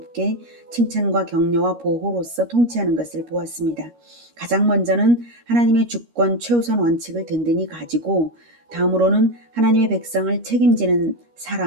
칭찬과 격려와 보호로서 통치하는 것을 보았습니다. 가장 먼저는 하나님의 주권 최우선 원칙을 든든히 가지고 다음으로는 하나님의 백성을 책임지는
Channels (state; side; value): late; left; 13 ms